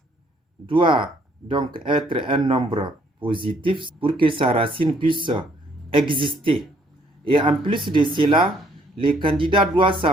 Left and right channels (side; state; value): both; normal; correlation 0.65